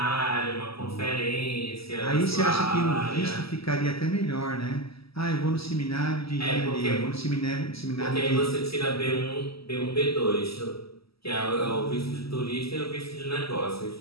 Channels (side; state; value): right; late; 0.76 ms